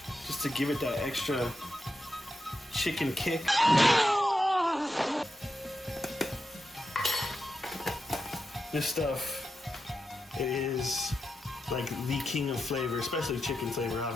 just to give it that extra chicken kick. This stuff, it is like the king of flavor, especially chicken flavor.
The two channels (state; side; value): normal; both; correlation 0.87